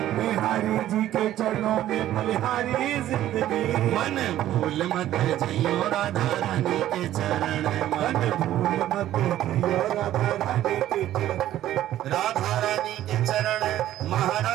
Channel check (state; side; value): quieter; left; 13.0 dB